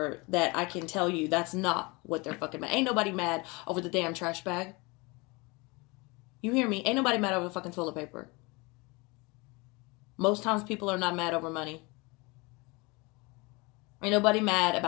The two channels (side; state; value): right; quieter; 26.5 dB